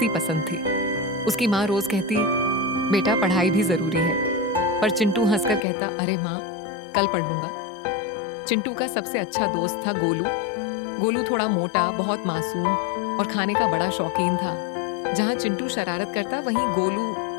पसंद थी। उसकी माँ रोज कहती, बेटा पढ़ाई भी जरूरी है, पर चिंटू हंसकर कहता, अरे माँ कल पढ़ लूंगा। चिंटू का सबसे अच्छा दोस्त था गोलू। गोलू थोड़ा मोटा, बहुत मासूम और खाने का बड़ा शौकीन था। जहां चिंटू शरारत करता, वहीं गोलू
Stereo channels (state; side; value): drops out; right; at 5.6 s